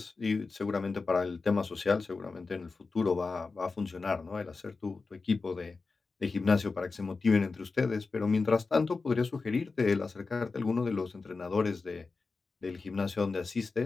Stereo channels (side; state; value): right; quieter; 4.2 dB